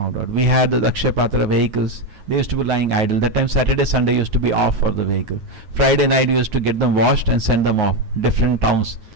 out. We had the Akshaya Patra vehicles. They used to be lying idle. That time Saturday, Sunday used to be off for the vehicle. Friday night we used to get them washed and send them off different towns.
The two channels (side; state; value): left; late; 9.5 ms